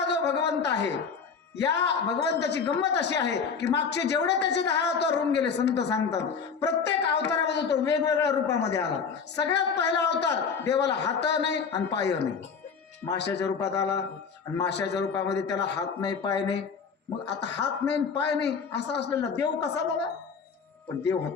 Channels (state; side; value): quieter; right; 5.9 dB